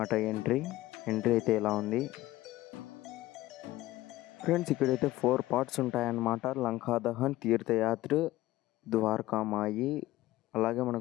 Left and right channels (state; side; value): quieter; right; 17.0 dB